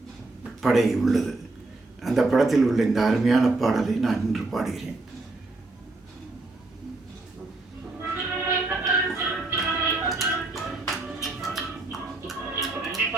படை உள்ளது. அந்த படத்தில் உள்ள இந்த அருமையான பாடலை நான் இன்று பாடுகிறேன்.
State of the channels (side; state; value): left; quieter; 3.1 dB